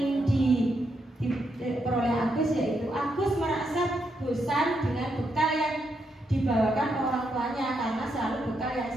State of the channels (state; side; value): normal; both; correlation 0.80